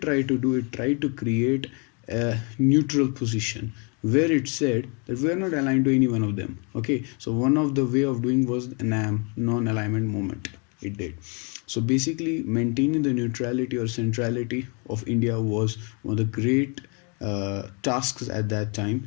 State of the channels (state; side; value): quieter; right; 34.7 dB